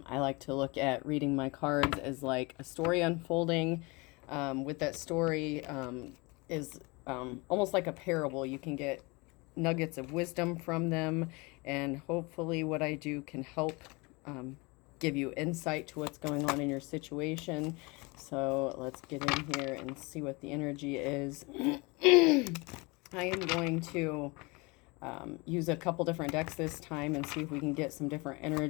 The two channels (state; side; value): quieter; right; 26.7 dB